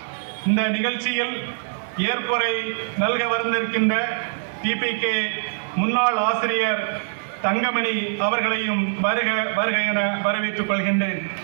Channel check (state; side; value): silent; left; 63 dB below the other